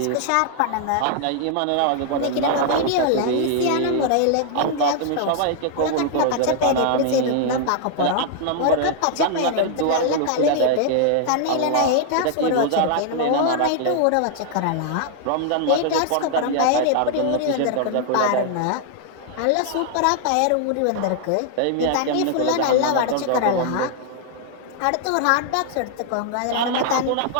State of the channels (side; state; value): both; different; correlation -0.01